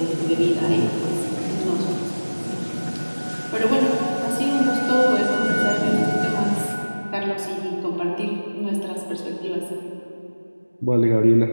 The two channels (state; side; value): inverted; both; correlation -1.00